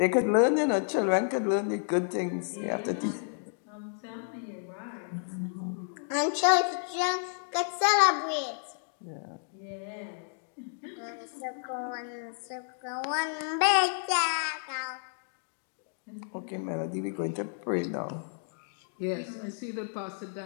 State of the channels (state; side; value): silent; right; digital silence